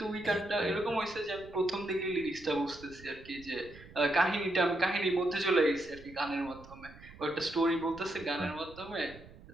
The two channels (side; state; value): right; noise; rumble, 19 dB below the sound